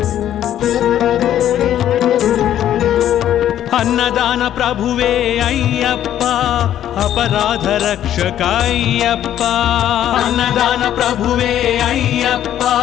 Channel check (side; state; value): right; quieter; 11.3 dB